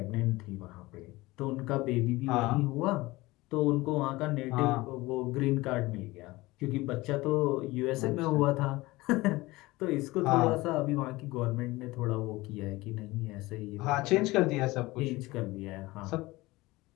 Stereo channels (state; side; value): quieter; right; 20.5 dB